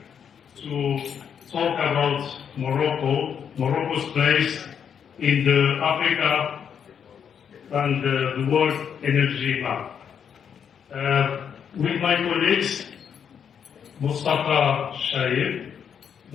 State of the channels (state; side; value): quieter; right; 7.7 dB